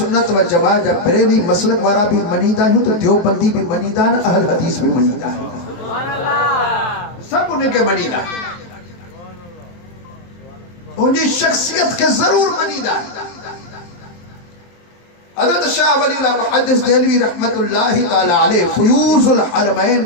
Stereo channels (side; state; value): right; late; 23 ms